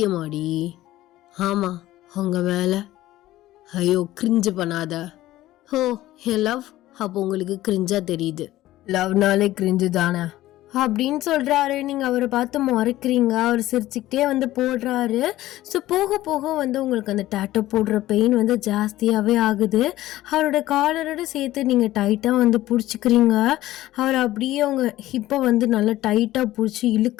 ஆமாம் உங்கள் மேலே. ஐயோ கிரிஞ்சு பண்ணாத. ஓ என் லவ், அப்போ உங்களுக்கு கிரிஞ்சா தெரியுது. லவ்னாலே கிரிஞ்சு தானே அப்படின்னு சொல்கிறாரு. நீங்கள் அவரை பார்த்து முறைக்கிறீங்க. அவர் சிரிச்சுக்கிட்டே வந்து போடுறாரு. ஸோ போக போக வந்து உங்களுக்கு அந்த டேட்டோ போடுற பெயின் வந்து ஜாஸ்தியாகவே ஆகுது. அவரோட காலரோட சேர்த்து நீங்கள் டைட்டாக வந்து பிடிச்சிக்கிறீங்க. அவர் அப்படியே அவங்க ஹிப்பை வந்து நல்லா டைட்டாக பிடிச்சி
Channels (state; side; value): quieter; right; 15.6 dB